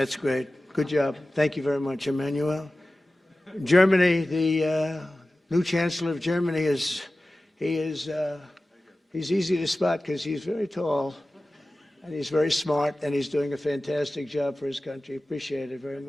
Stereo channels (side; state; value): both; normal; correlation 0.96